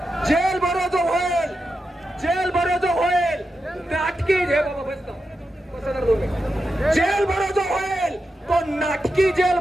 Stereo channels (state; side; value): normal; both; correlation 0.88